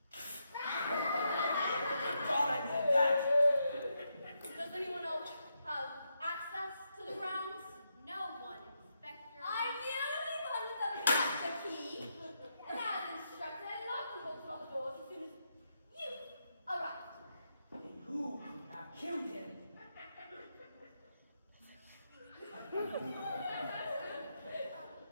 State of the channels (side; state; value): both; inverted; correlation -0.82